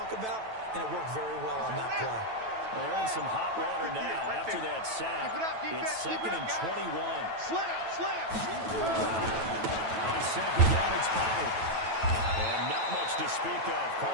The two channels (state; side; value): late; left; 9.1 ms